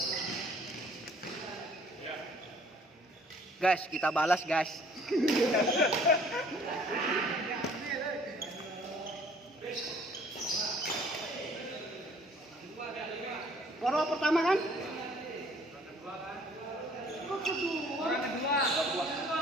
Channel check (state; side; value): normal; both; correlation 0.56